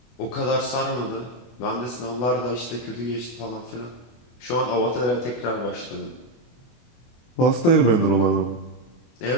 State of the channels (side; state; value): right; late; 24 ms